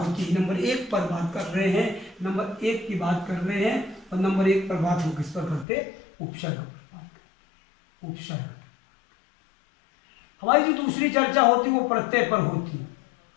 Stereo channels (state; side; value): drops out; right; at 5.7 s